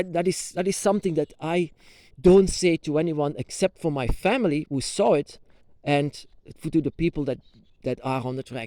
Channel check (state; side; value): identical; both; correlation 1.00